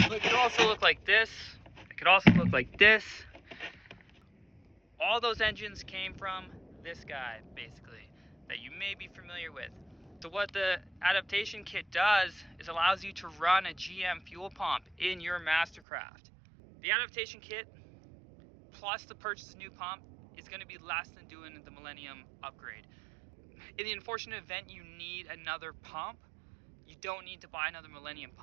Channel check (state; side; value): drops out; left; at 15.8 s